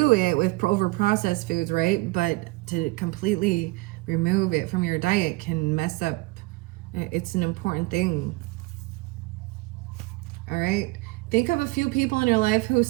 it with over-processed foods, right? But to completely remove it from your diet can mess up. It's an important thing. All right. Think of a few people in your life who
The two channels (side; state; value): left; quieter; 23.5 dB